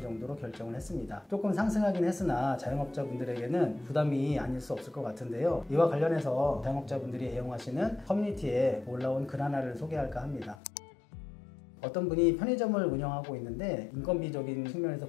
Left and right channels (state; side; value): drops out; right; at 10.6 s